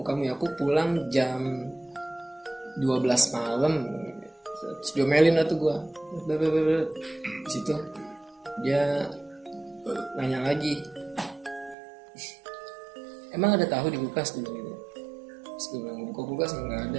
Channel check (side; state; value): left; drops out; at 11.8 s